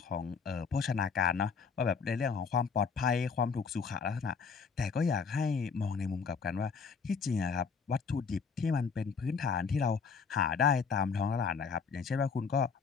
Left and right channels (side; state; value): right; quieter; 5.6 dB